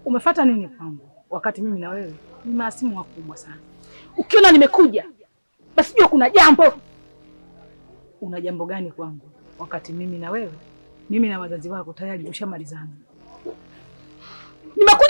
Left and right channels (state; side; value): inverted; both; correlation -1.00